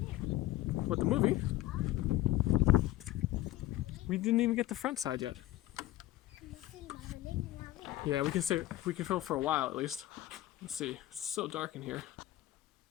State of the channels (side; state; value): right; quieter; 15.3 dB